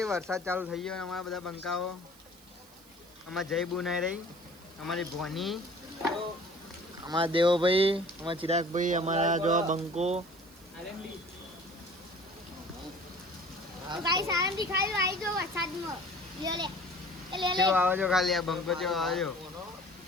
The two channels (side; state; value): right; noise; hiss, 25 dB below the sound